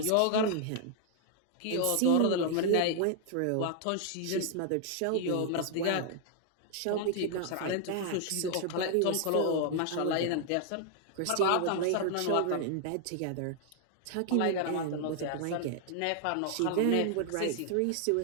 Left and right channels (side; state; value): both; different; correlation 0.00